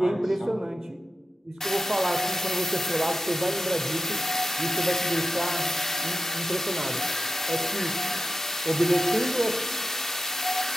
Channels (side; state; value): both; normal; correlation 0.91